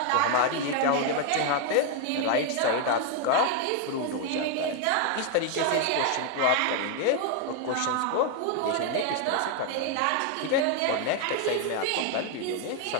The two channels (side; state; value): both; different; correlation 0.01